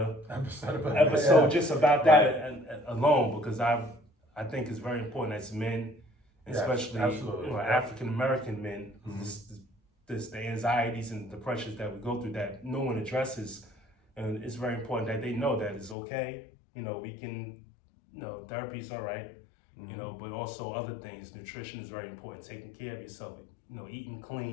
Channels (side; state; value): right; drops out; at 16.0 s